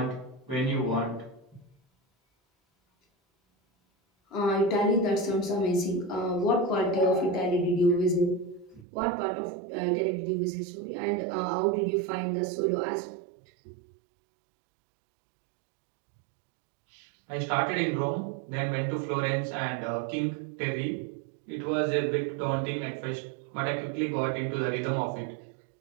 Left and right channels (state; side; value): drops out; left; at 8.8 s